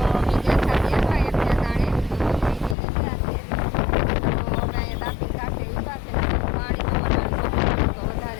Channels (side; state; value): right; drops out; at 2.8 s